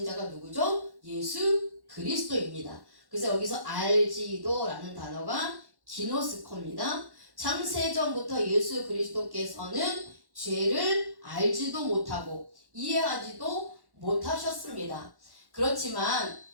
자가 누구죠? 예수 그리스도입니다. 그래서 여기서 알지도라는 단어가 기노스코입니다. 창세전부터 예수 그리스도께서는 죄를 알지도 못하고 이해하지도 못하셨습니다. 그렇지만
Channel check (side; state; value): left; late; 1.1 ms